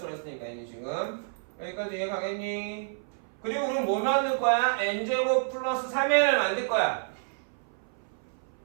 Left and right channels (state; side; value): silent; left; 57 dB below the other